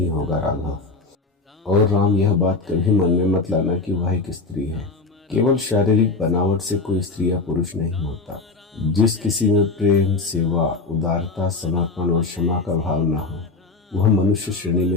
होगा राघव। और राम, यह बात कभी मन में मत लाना कि वह एक स्त्री है। केवल शारीरिक बनावट से कोई स्त्री या पुरुष नहीं होता। जिस किसी में प्रेम, सेवा, उदारता, समर्पण और क्षमा का भाव न हो, वह मनुष्य श्रेणी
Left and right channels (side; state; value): right; quieter; 3.7 dB